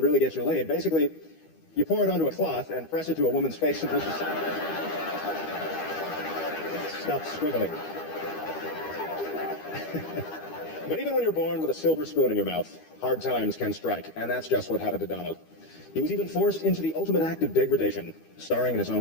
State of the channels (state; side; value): late; right; 13 ms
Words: really get you laid. Basically, you pour it onto a cloth and press it to a woman's face until she stops swiveling. But even when you're born with a silver spoon in your mouth, hard times can strike, and that's just what happened to Donald. He was even forced into the ultimate act of degradation, starring in his